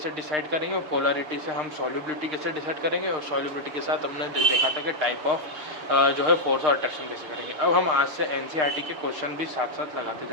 डिसाइड करेंगे, और पोलरिटी से हम सॉल्युबिलिटी कैसे डिसाइड करेंगे, और सॉल्युबिलिटी के साथ हमने देखा था कि टाइप ऑफ जो है फोर्स और अट्रैक्शन कैसे करेंगे। अब हम आज से एनसीईआरटी के क्वेश्चन भी साथ साथ लगाते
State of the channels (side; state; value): left; late; 6.5 ms